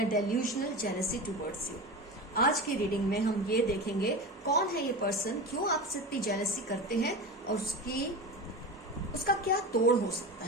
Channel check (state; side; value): normal; both; correlation 0.27